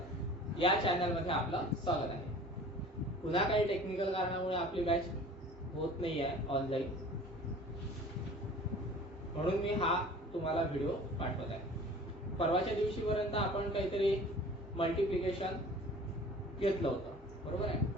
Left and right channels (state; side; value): normal; both; correlation 0.45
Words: या चॅनलमध्ये आपलं स्वागत आहे. पुन्हा काही टेक्निकल कारणामुळे आपली बॅच होत नाही आहे ऑनलाईन, म्हणून मी हा तुम्हाला व्हिडिओ पाठवत आहे. परवाच्या दिवशीपर्यंत आपण काहीतरी मल्टिप्लिकेशन घेतलं होतं, बरोबर आहे,